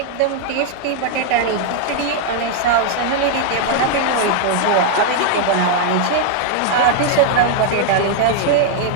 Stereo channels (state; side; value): different; both; correlation 0.00